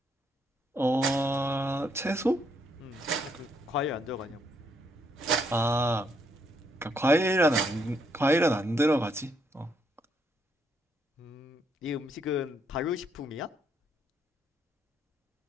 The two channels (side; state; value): both; normal; correlation 0.73